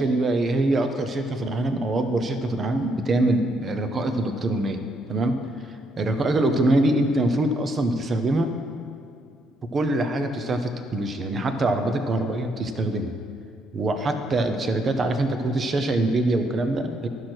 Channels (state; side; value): normal; both; correlation 0.74